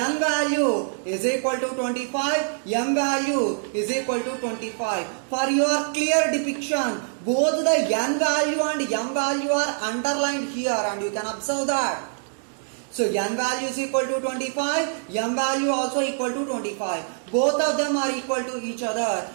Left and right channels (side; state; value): left; silent; digital silence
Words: value is equal to 25, M value is equal to 25. For your clear depiction, both the N value and M value are underlined here and you can observe that. So N value is equal to 25, M value also equal to 25. Both of them are equal to each other.